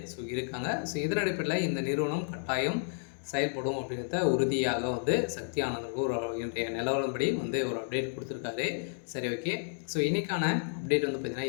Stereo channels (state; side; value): silent; right; digital silence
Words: இருக்காங்க. இதன் அடிப்படையில் இந்த நிறுவனம் கட்டாயம் செயல்படும் அப்படின்றத உறுதியாக வந்து சக்தி ஆனந்துக்கு ஒரு இன்றைய நிலவரப்படி வந்து ஒரு அப்டேட் கொடுத்துருக்காரு. சரி, ஓகே. இன்றைக்கான அப்டேட் வந்து பார்த்திங்கன்னா